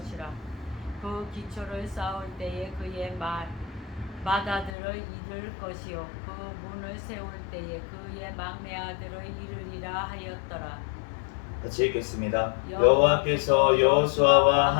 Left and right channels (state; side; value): drops out; right; at 4.8 s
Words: 그 기초를 쌓을 때에 그의 맏아들을 이를 것이요 그 문을 세울 때에 그의 막내 아들을 이르리라 하였더라. 같이 읽겠습니다. 여호와께서 여호수아와